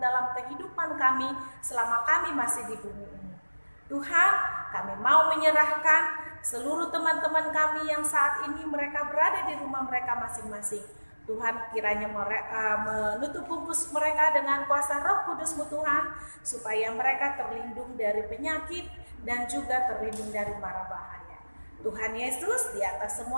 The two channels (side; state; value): both; inverted; correlation -1.00